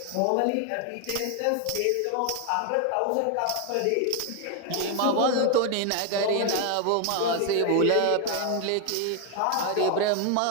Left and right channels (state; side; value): different; both; correlation 0.01